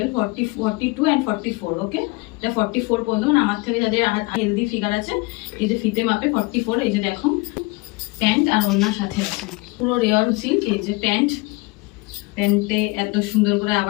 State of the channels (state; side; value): quieter; right; 25.0 dB